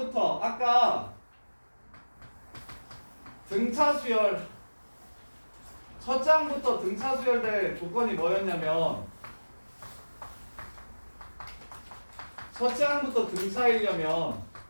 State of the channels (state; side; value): inverted; both; correlation -1.00